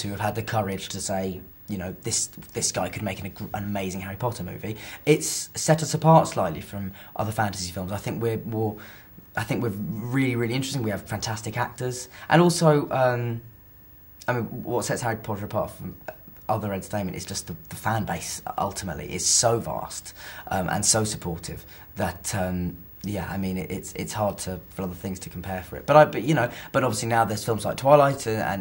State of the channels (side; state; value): both; identical; correlation 1.00